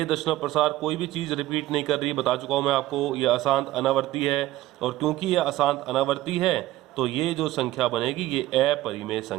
दशमलव प्रसार कोई भी चीज़ रिपीट नहीं कर रही, बता चुका हूँ मैं आपको, ये अशांत अनावर्ती है। और क्योंकि ये अशांत अनावर्ती है तो ये जो संख्या बनेगी ये अपरिमेय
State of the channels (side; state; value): left; quieter; 16.2 dB